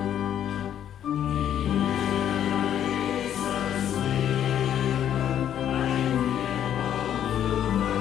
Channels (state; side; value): quieter; right; 10.1 dB